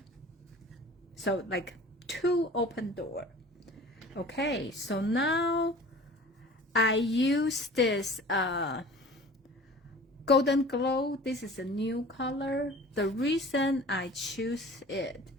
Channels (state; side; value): normal; both; correlation 0.43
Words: So like 2 open door. Okay, so now I use this Golden Glow. This is a new color. The reason I choose it,